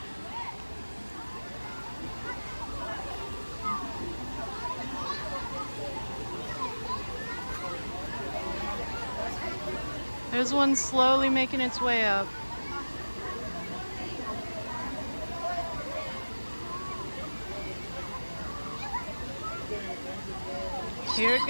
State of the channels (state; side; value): inverted; both; correlation -1.00